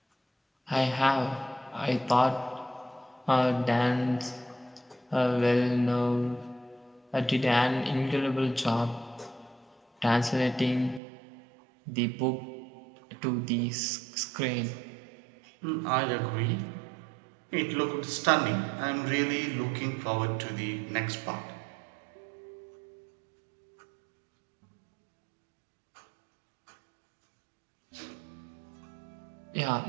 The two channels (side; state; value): left; drops out; at 11.0 s